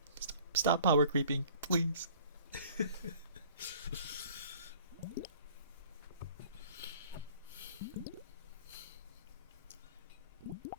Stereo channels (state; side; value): inverted; both; correlation -0.51